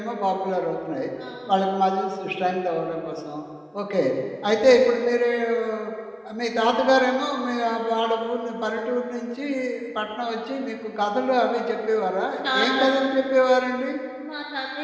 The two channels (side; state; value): both; identical; correlation 1.00